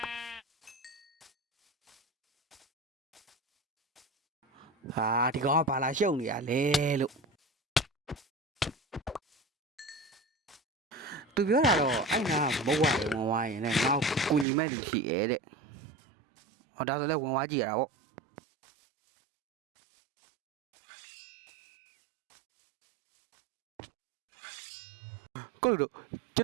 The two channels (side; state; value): left; drops out; at 14.5 s